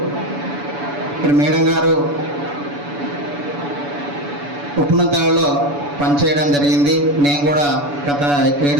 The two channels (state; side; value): late; left; 7.0 ms